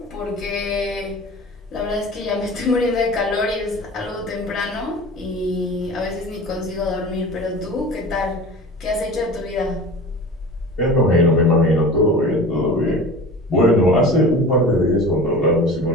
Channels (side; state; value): both; normal; correlation 0.37